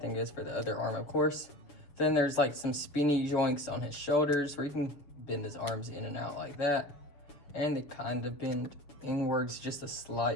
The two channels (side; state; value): right; late; 7.0 ms